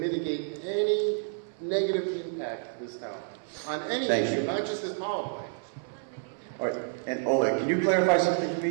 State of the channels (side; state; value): left; silent; 58 dB below the other